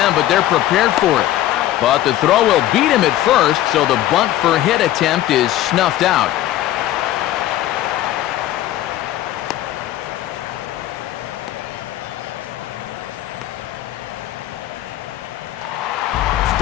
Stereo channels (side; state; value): right; quieter; 13.7 dB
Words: but they're prepared for it. But the throw will beat him at first, so the bunt for hit attempt is snuffed out.